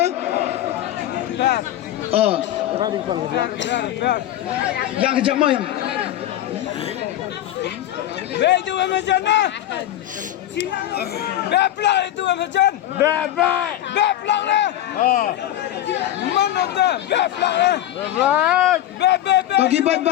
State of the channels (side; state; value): right; quieter; 13.0 dB